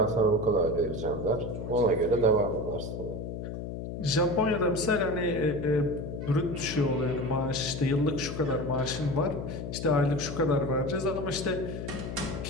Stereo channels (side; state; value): left; noise; hum, 6 dB below the sound